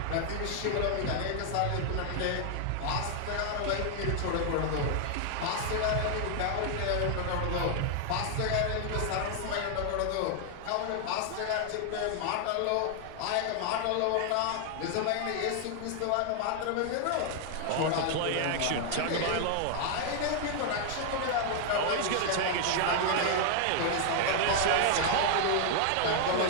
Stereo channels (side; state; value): both; different; correlation 0.00